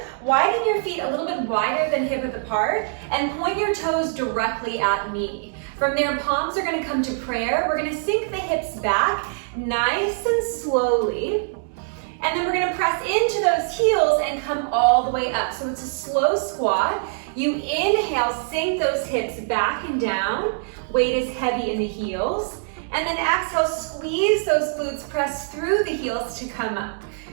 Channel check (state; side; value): silent; left; digital silence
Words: Widen your feet a little bit wider than hip width apart, and point your toes directly at me. From there, palms are going to come to prayer. We're going to sink the hips back, nice and slowly. And then we're gonna press into those heels and come all the way up. So it's a slow squat. You inhale, sink those hips back and down. Weight is heavy in the heels. And then exhale, squeeze those glutes, press through the heels to come up.